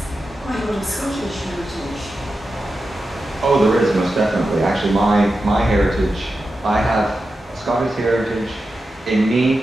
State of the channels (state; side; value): normal; both; correlation 0.91